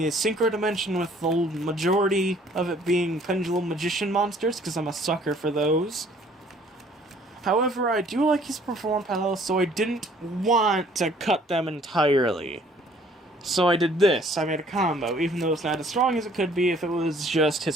Synchro Dimension, with the majority of it being Pendulum Magician monsters, because I'm a sucker for those. However, I do like his Perform Palace, so I didn't want to cut them entirely. So I did this. I made a combo, even though it's not as strong as it could be if it was just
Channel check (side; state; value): both; normal; correlation 0.58